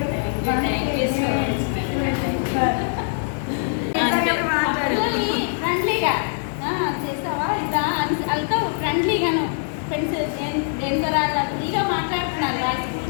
ఫ్రెండ్లీగా చేస్తావా ఇదా వాళ్ళతో ఫ్రెండ్లీగాను ఫ్రెండ్స్ దేని ద్వారా ఫ్రీగా మాట్లాడుతున్నారు వాళ్ళ స్కూల్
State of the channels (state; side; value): silent; right; 60 dB below the other